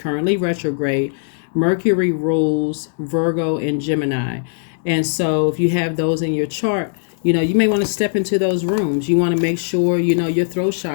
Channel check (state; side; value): silent; right; digital silence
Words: retrograde. Mercury rules Virgo and Gemini. And so if you have those in your chart, you know, you may want to step into those rooms. You want to make sure, you know, your throat